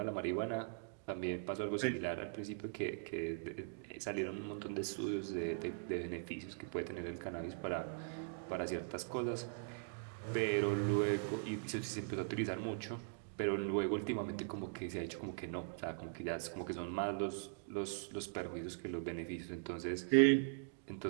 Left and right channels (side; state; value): left; silent; digital silence